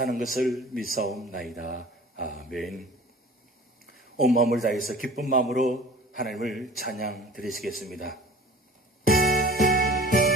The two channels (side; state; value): both; normal; correlation 0.44